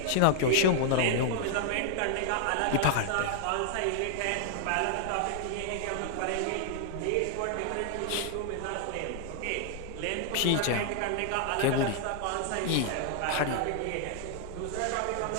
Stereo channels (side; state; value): both; different; correlation 0.00